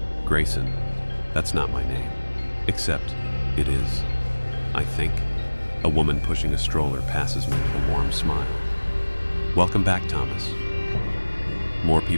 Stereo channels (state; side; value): inverted; both; correlation -1.00